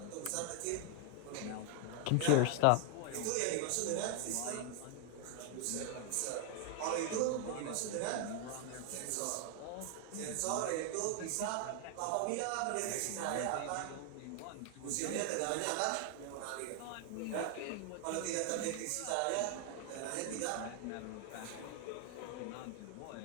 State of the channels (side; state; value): both; different; correlation 0.00